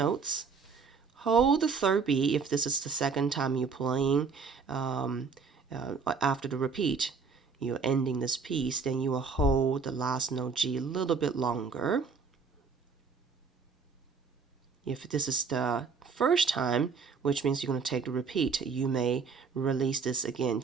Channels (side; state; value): left; quieter; 5.2 dB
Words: Hold the third B if this is the second time you're playing after the repeat. You're ending this piece, then you will hold the last note G a little bit longer. If this is the first time, which means you're going to take the repeat, you may release this again,